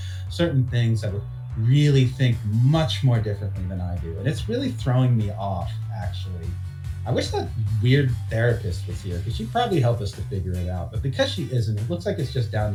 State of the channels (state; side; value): identical; both; correlation 1.00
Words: certain things that would really think much more differently than I do. And it's really throwing me off, actually. I wish that weird therapist was here because she'd probably help us to figure it out. But because she isn't, it looks like it's just down